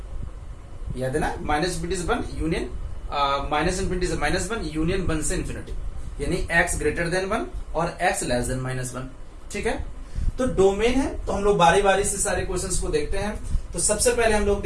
याद है ना, -∞ से 1 यूनियन, -∞ से -1 यूनियन 1 से ∞, यानी x ग्रेटर देन 1 और x लेस देन -1, ठीक है। तो डोमेन है, तो हम लोग बारी बारी से सारे क्वेश्चंस को देखते हैं। तो सबसे पहले हम लोग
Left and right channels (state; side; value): identical; both; correlation 1.00